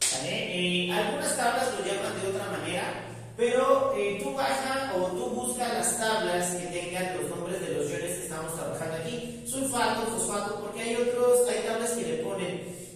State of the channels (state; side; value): identical; both; correlation 1.00